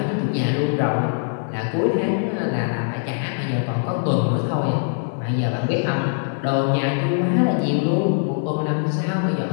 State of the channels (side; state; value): right; silent; digital silence